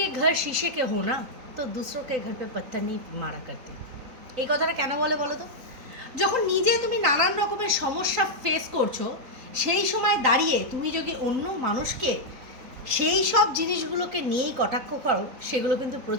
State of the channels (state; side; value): late; left; 3.8 ms